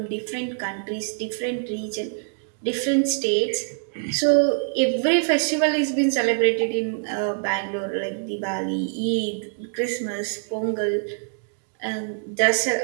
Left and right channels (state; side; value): silent; left; digital silence